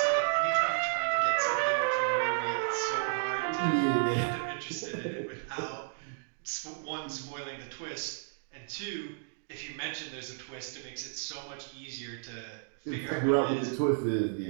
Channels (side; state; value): left; silent; digital silence